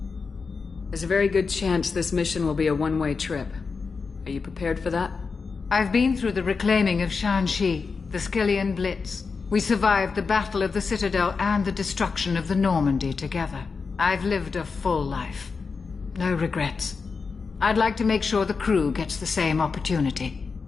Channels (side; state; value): right; quieter; 4.9 dB